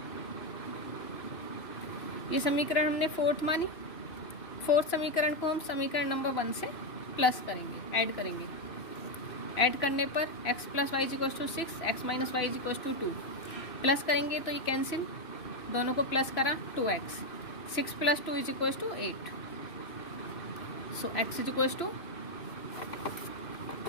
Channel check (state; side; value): late; right; 3.0 ms